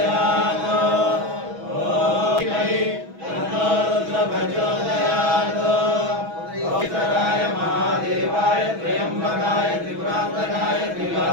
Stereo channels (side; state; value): left; late; 6.1 ms